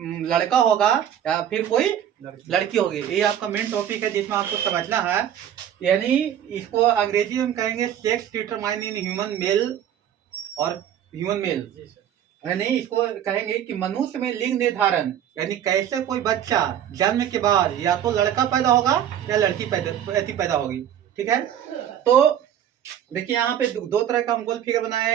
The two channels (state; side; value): quieter; left; 10.2 dB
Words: लड़का होगा या फिर कोई लड़की होगी, ये आपका मेन टॉपिक है जिसमें आपको समझना है। यानी इसको अंग्रेजी में कहेंगे sex determine in human male और ह्यूमन मेल, यानी इसको कहेंगे कि मनुष्य में लिंग निर्धारण, यानी कैसे कोई बच्चा जन्म के बाद या तो लड़का पैदा होगा या लड़की पैदा होगी। ठीक है, तो देखिए यहाँ पे दो तरह का हम गोल फिगर बनाए